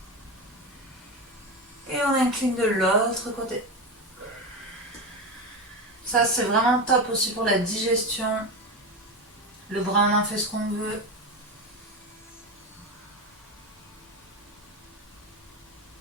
Et on incline de l'autre côté. Ça, c'est vraiment top aussi pour la digestion. Le bras, on en fait ce qu'on veut.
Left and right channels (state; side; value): normal; both; correlation 0.18